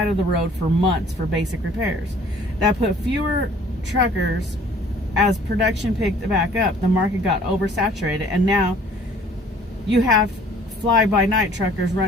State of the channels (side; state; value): both; normal; correlation 0.54